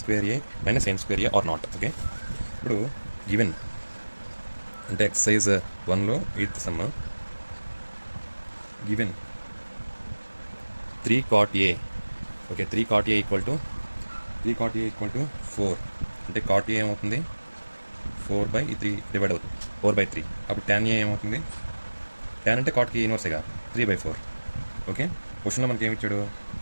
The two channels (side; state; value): both; inverted; correlation -1.00